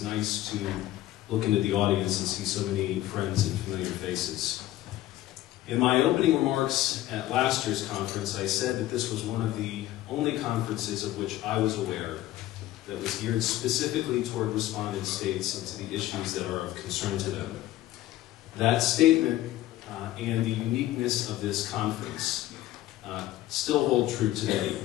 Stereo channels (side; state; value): right; quieter; 14.9 dB